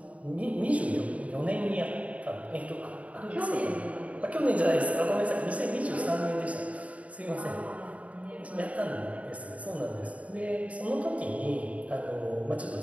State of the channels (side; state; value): left; late; 0.067 ms